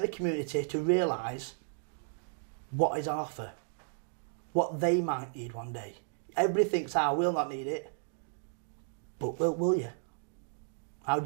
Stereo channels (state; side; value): silent; left; digital silence